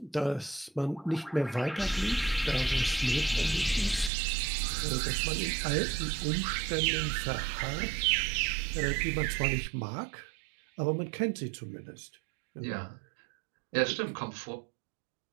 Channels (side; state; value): left; drops out; at 4.1 s